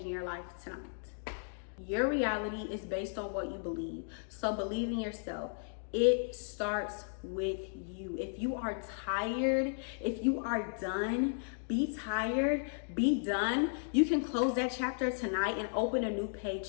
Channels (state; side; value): silent; right; digital silence